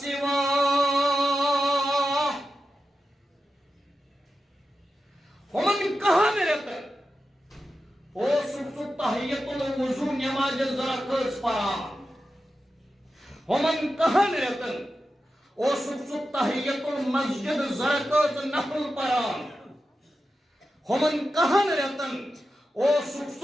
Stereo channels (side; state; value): both; normal; correlation 0.91